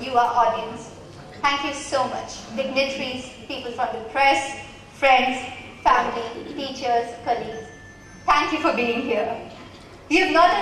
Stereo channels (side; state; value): both; identical; correlation 1.00